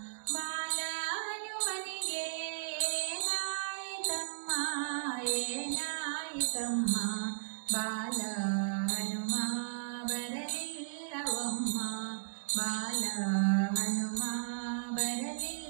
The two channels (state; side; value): silent; left; digital silence